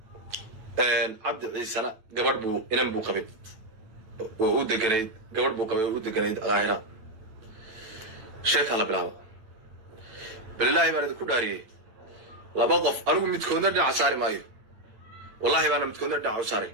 cabdi ciisana gabadh buu inan buu qabay oo u deganayd gabadh buu qabay oo u deganayd qaahira sheeka la bilaabo billahi baan idinku dhaariyay laba qof anigu midkoodna dhinac saari maayo wallahi baan midkoodna dhinac saari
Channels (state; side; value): late; left; 9.0 ms